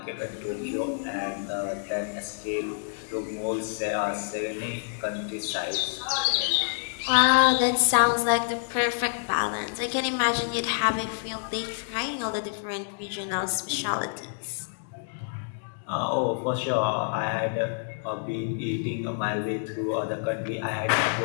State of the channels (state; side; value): silent; right; digital silence